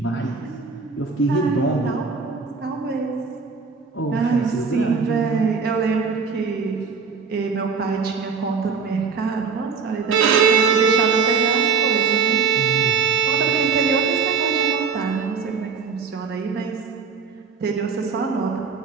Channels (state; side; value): quieter; left; 5.3 dB